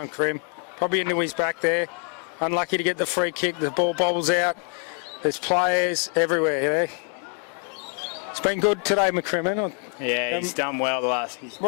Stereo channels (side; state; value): right; quieter; 39.9 dB